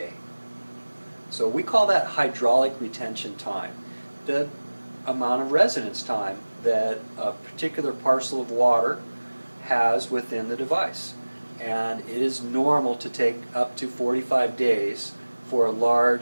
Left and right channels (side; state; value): both; inverted; correlation -1.00